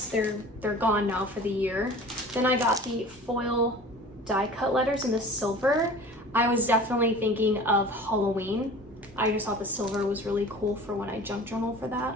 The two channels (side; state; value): both; normal; correlation 0.41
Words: They're gone now for the year. Then I got the foil die cut letters in the silver. I was definitely thinking of Halloween. I just thought the silver was really cool for when I junk journal for that.